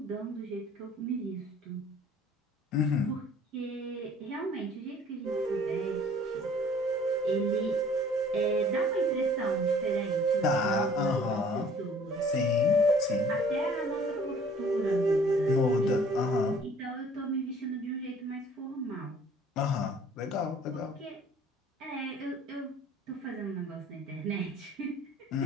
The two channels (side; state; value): both; normal; correlation 0.53